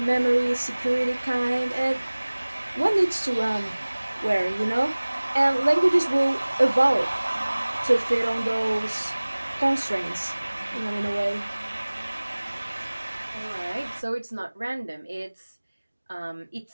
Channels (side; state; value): both; inverted; correlation -1.00